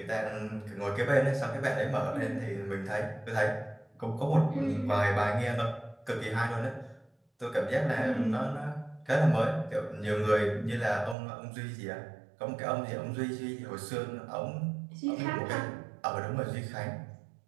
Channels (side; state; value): left; drops out; at 11.2 s